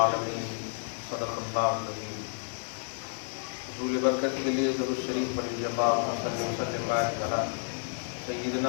صدق اللہ العظیم۔ حصول برکت کے لیے درود شریف پڑھیے، اللہم صلی وسلم وبارک علی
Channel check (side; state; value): right; silent; 57 dB below the other